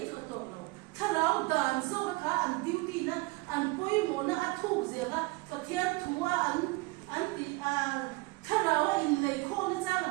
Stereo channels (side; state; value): left; quieter; 24.2 dB